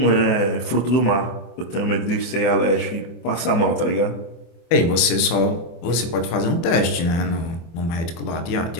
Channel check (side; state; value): right; late; 24 ms